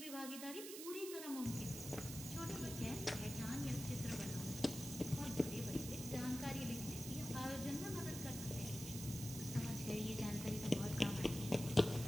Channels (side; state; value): right; noise; hiss, 8 dB below the sound